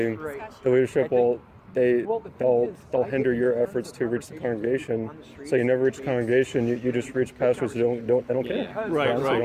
leadership will they'll hinder your efforts to reach the congregation. So you never reach the congregation. You just reach pastors who they don't care. Right, Honestly, right. They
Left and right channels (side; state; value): both; identical; correlation 1.00